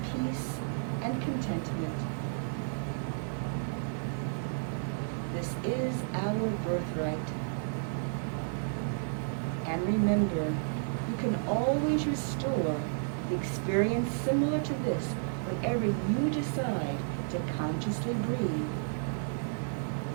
peace and contentment. This is our birthright. And remember, you can always restore the experience similar to this whenever you decide to consciously breathe.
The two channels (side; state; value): left; silent; digital silence